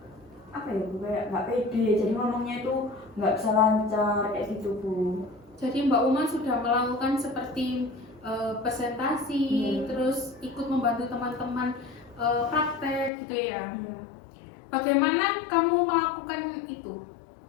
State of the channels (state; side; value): drops out; right; at 13.1 s